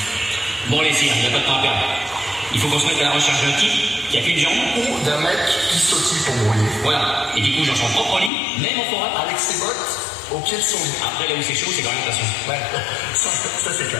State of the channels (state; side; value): drops out; right; at 8.3 s